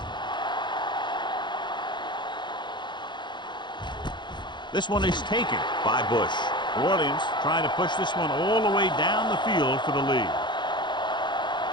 This one is taken by Bush. New Orleans trying to push this one all the way down the field for the lead.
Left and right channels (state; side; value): late; right; 0.22 ms